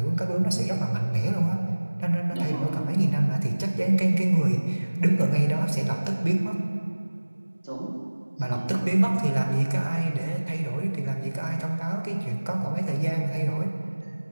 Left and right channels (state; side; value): inverted; both; correlation -1.00